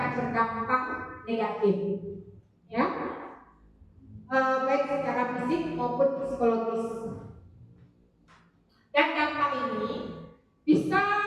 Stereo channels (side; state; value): both; identical; correlation 1.00